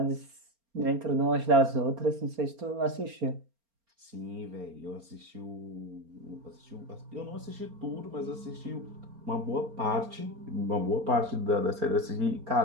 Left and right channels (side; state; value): left; late; 4.3 ms